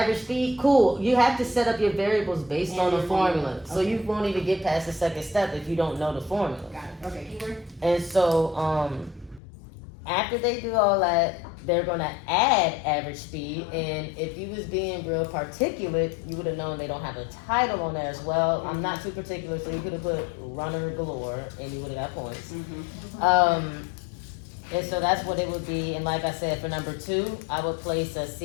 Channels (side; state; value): right; drops out; at 9.4 s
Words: speed, cool. You have to set up your variables based on the your formula. formula. So you won't even get past the second step if you don't know the formula. Got it. Okay, keep going. And so after they do all that, they're gonna add average speed. And if you was being real particulate, you would have known they don't have a title on there as well. I'm not too particular, so you could have put runner galore, and you would have got points. And so that's what it would be. And like I said, for number 2, I would place a